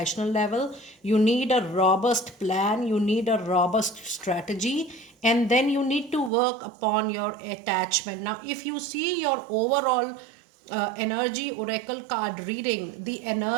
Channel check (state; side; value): drops out; left; at 6.3 s